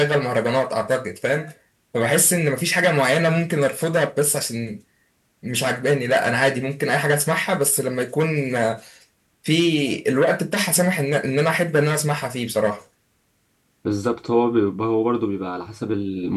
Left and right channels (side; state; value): both; identical; correlation 1.00